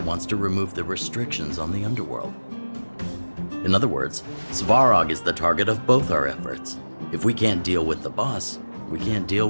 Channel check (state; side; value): inverted; both; correlation -1.00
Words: to remove the restrictions on the Underworld. In other words, Svarog is the target of both our efforts. If we can't deal with the boss, we can't deal